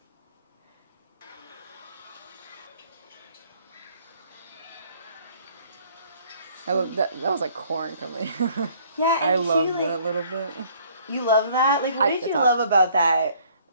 That was like corn coming. Yeah, and I love like, that a little bit. You love that? Like, what did you love about that?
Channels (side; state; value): both; inverted; correlation -0.59